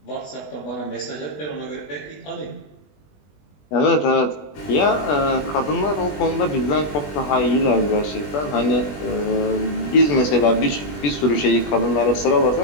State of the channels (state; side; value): late; right; 20 ms